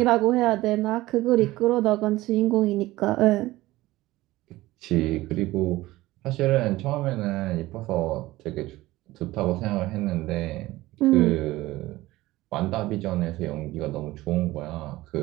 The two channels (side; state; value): left; quieter; 17.9 dB